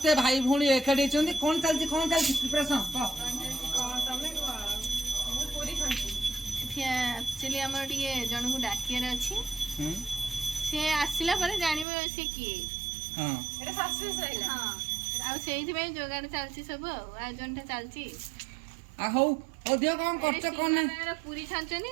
भाई भौणी एकाठी कौन चलती प्रिपरेशन एक्चुअली आम जन को डाकियार अच्छी सी आसला जानवे सी किए जोगाड़ चलती सब आयोजन चलती कौन कर पूरी छानी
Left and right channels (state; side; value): drops out; left; at 11.9 s